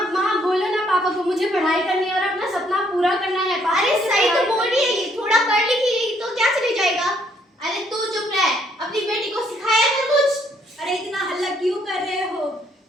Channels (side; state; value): both; normal; correlation 0.68